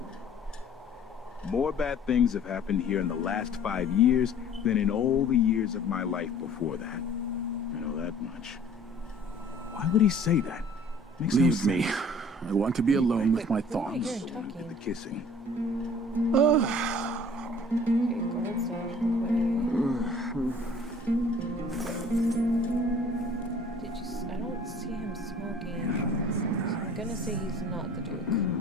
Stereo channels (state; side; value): normal; both; correlation 0.50